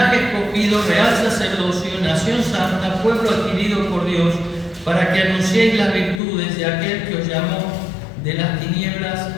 escogido, real sacerdocio, nación santa, pueblo adquirido por Dios, para que anunciéis las virtudes de aquel que os llamó de las tinieblas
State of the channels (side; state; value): right; drops out; at 6.2 s